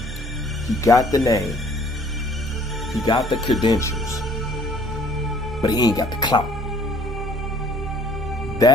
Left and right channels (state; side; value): normal; both; correlation 0.57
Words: he got the name, he got the credentials, but he ain't got the clout.